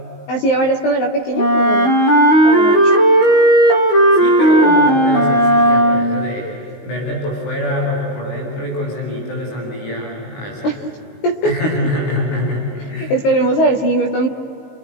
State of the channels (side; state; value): right; late; 19 ms